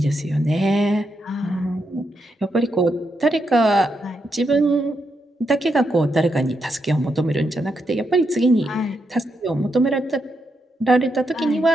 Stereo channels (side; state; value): both; normal; correlation 0.82